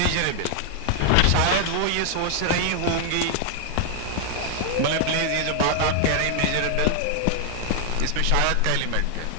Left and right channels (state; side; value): different; both; correlation 0.00